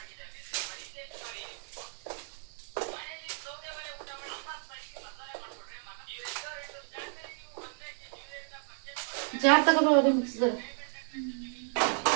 ಜಾರ್ ತಗೋಬೋದು ಮಿಕ್ಸಿದಲ್ಲಿ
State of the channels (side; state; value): left; silent; 56 dB below the other